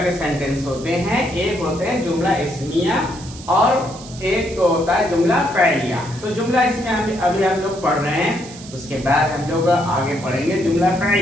के सेंटेंस होते हैं, एक होते हैं जुमला इस्मिया और एक होता है जुमला फ़इलिया। तो जुमला इस्मिया अभी हम लोग पढ़ रहे हैं, उसके बाद हम लोग आगे पढ़ेंगे जुमला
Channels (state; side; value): noise; right; hiss, 17 dB below the sound